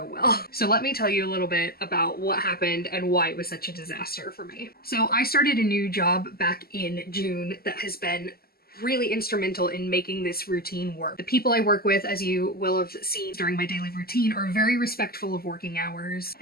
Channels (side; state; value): right; late; 0.45 ms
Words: well. So let me tell you a little bit about what happened and why it was such a disaster for me. So I started a new job back in June that has been really instrumental in making this routine work. The people I work with, as you will have seen during my daily routine, are very respectful of working hours.